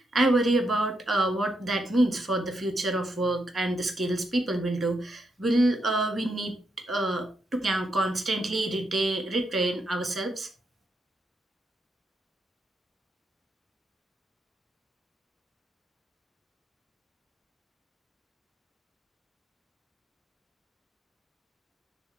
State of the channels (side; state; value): both; normal; correlation 0.81